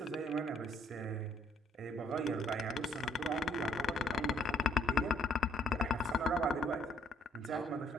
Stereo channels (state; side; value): normal; both; correlation 0.66